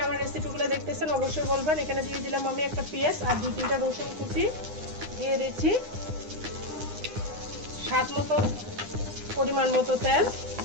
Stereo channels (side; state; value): left; late; 9.8 ms